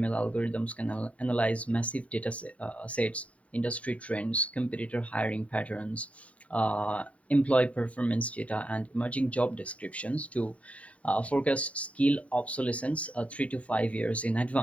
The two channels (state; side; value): late; right; 0.066 ms